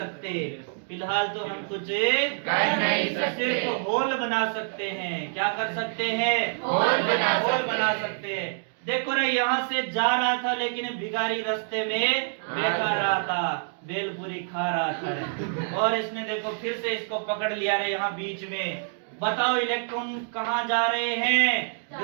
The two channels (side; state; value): left; silent; digital silence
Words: फिलहाल तो हम कुछ कर नहीं सकते। सिर्फ होल बना सकते हैं। क्या कर सकते हैं? होल बना होल सकते हैं। देखो रे, यहाँ से जा रहा था लेकिन भिखारी रास्ते में बैठा रहा था, बेलपूरी खा रहा था रे। और इसने देखो फिर से इसको पकड़ लिया रे यहाँ बीच में। बताओ इलेक्ट्रॉन कहाँ जा रहे हैं?